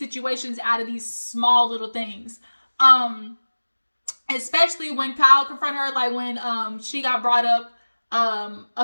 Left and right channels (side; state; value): both; inverted; correlation -1.00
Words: out of these small little things. Especially when Kyle confronted her, like when she got brought up